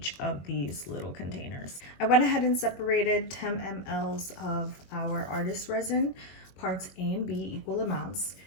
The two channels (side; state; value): right; late; 21 ms